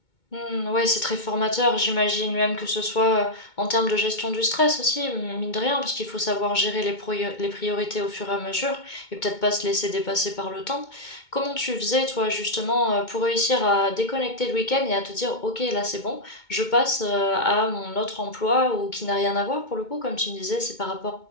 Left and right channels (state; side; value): late; right; 2.2 ms